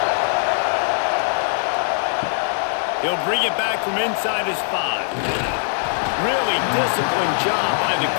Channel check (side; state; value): right; silent; digital silence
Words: He'll bring it back from inside his 5. Really disciplined job by the